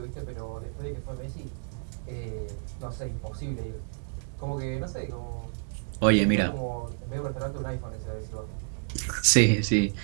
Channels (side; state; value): left; silent; digital silence